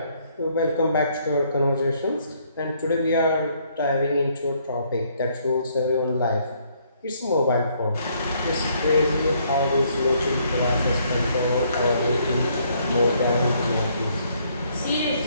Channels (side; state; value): both; inverted; correlation -0.68